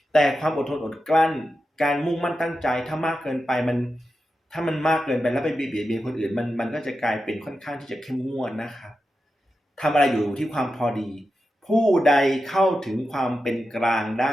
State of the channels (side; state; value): both; normal; correlation 0.90